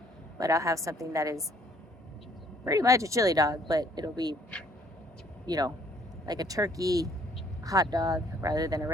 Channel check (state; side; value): normal; both; correlation 0.62